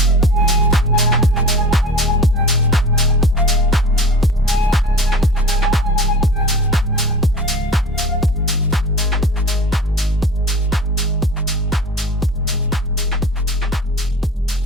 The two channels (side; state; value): both; normal; correlation 0.38